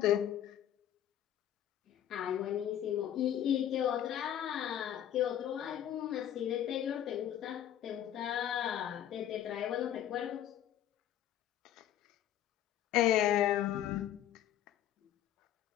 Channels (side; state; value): right; quieter; 11.0 dB